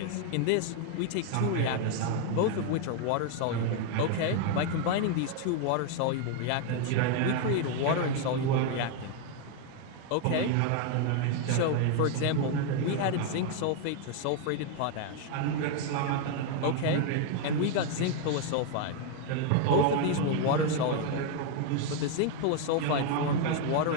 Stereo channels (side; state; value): both; different; correlation 0.01